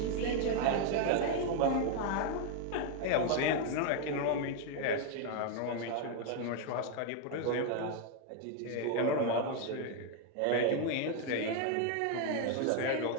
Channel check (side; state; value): both; different; correlation 0.00